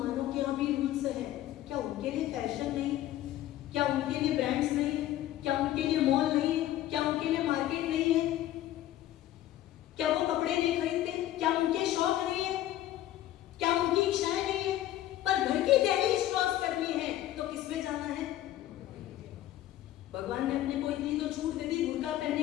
के यहाँ भी रूल्स हैं। क्या उनके लिए फैशन नहीं? क्या उनके लिए ब्रांड्स नहीं है? क्या उनके लिए मॉल नहीं है? क्या उनके लिए मार्केट नहीं है? क्या वो कपड़े नहीं खरीदते? क्या उनके शौक नहीं है? क्या उनकी इच्छाएं नहीं है? पर घर की दहलीज क्रॉस करनी है तो किसमें जाना है? भगवान ने अपने को इतनी तो छूट दे दी, बुर्का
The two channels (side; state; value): right; quieter; 13.6 dB